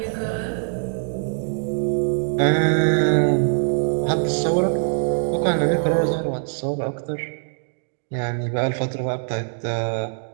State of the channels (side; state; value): left; silent; 64 dB below the other